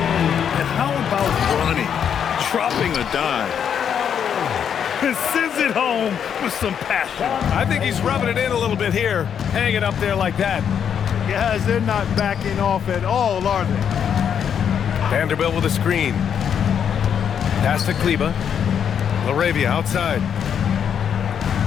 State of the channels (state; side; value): quieter; right; 8.1 dB